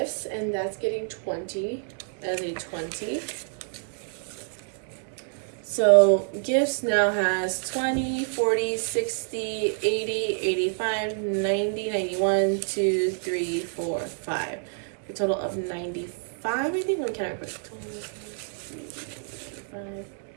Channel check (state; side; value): silent; left; 60 dB below the other